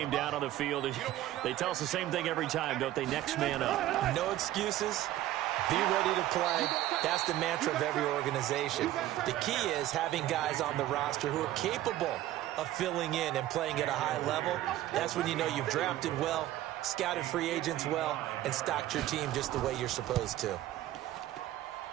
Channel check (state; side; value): quieter; left; 14.2 dB